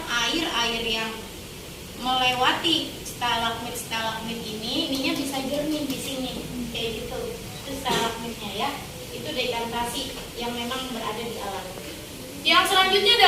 air yang melewati stalagmit ininya bisa jernih di sini kayak gitu. Itu stalagmitnya ya. Itu dekantasi yang memang berada di alam. Yang selanjutnya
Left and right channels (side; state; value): both; identical; correlation 1.00